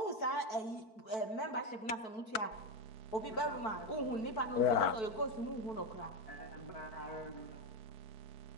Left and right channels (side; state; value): right; late; 4.6 ms